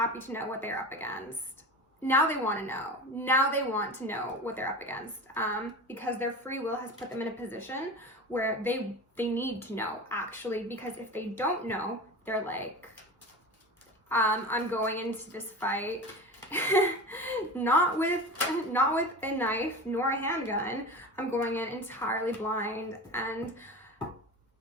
to know what they're up against. Now they want to know. Now they want to know what they're up against, because their free will has put them in a position where they need to know, actually, because if they don't know, they're like, I'm going into this fight not with a knife nor a handgun. I'm going in entirely blind, and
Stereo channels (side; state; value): both; normal; correlation 0.30